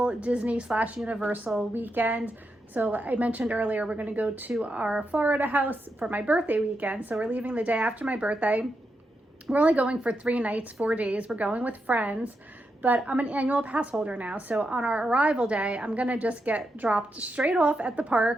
Disney/Universal weekend. So I mentioned earlier, we're going to go to our Florida house for my birthday weekend. So we're leaving the day after my birthday. We're only going for 3 nights, 4 days. We're going with friends, but I'm an annual pass holder now. So on our arrival day, I'm going to just get dropped straight off at the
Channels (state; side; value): normal; both; correlation 0.85